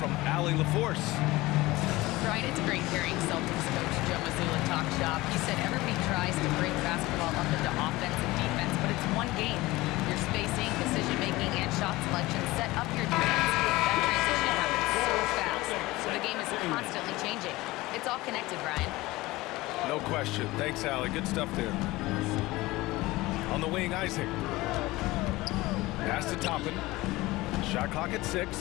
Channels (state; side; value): quieter; right; 19.7 dB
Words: Allie LaForce. Brian, it's great hearing Celtics coach Joe Mazzulla talk shop. He said everybody tries to break basketball up into offense and defense, but it's one game. Your spacing, decision-making, and shot selection set up your defense. That transition happens so fast, so the game is constantly changing. It's all connected, Brian. No question. Thanks, Allie. Good stuff there. On the wing, Isaac. Pass to Toppin. Shot clock at 6.